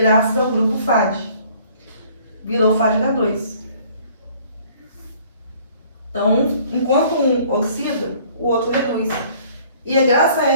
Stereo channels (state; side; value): inverted; both; correlation -0.56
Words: ao grupo FAD. Virou FAD-H2. Então, enquanto um oxida, o outro reduz. E é graças a